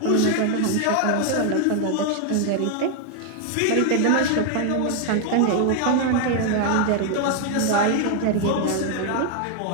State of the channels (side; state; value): both; different; correlation 0.00